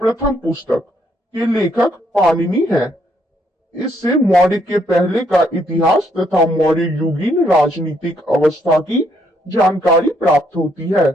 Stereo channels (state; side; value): normal; both; correlation 0.72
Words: प्रथम पुस्तक के लेखक पाणिनि है। इससे मौर्य के पहले का इतिहास तथा मौर्य युगीन राजनीतिक अवस्था की जानकारी प्राप्त होती है।